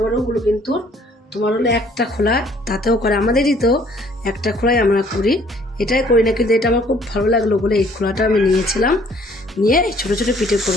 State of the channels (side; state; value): both; normal; correlation 0.59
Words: বড়গুলো কিন্তু তোমার হলো একটা খোলা তাতেও করে। আমাদেরই তো একটা খোলাই আমরা করি, এটাই করি না, কিন্তু এটা আমার খুব ভালো লাগলো বলে এই খোলাটা আমি নিয়েছিলাম। নিয়ে এই ছোটো ছোটো পিঠে